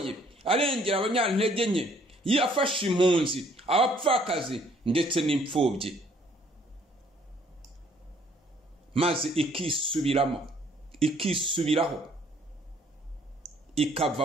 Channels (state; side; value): normal; both; correlation 0.62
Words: arengera abanyantege nke, yafasha impunzi, abapfakazi ndetse n'imfubyi, maze ikisubiraho,